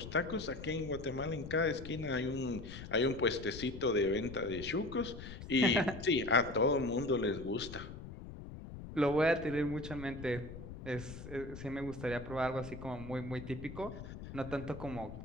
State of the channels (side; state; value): left; noise; rumble, 11 dB below the sound